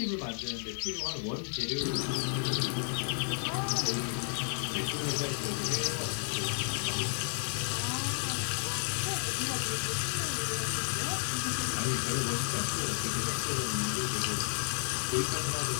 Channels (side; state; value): right; silent; digital silence